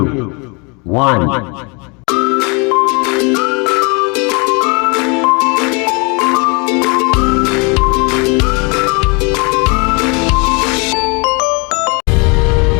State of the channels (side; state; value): right; quieter; 31.0 dB